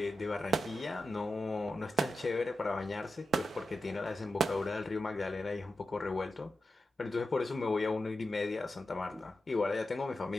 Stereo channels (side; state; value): both; normal; correlation 0.90